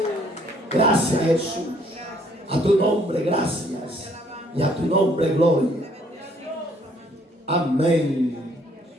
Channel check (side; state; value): both; normal; correlation 0.64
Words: Gracias, Jesús. A tu nombre, gracias. Y a tu nombre, gloria. Amén